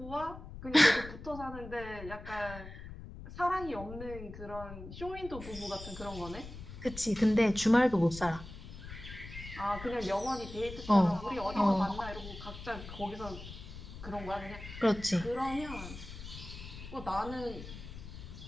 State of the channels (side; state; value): left; noise; rumble, 12 dB below the sound